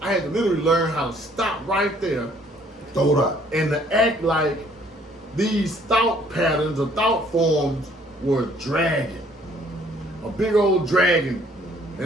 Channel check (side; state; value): both; normal; correlation 0.61